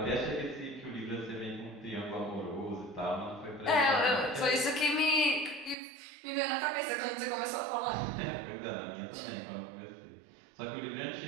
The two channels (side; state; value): left; drops out; at 5.8 s